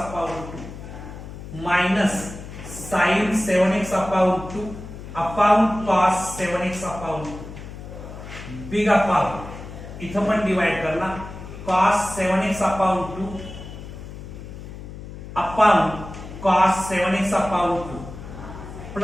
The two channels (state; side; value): noise; left; hum, 12 dB below the sound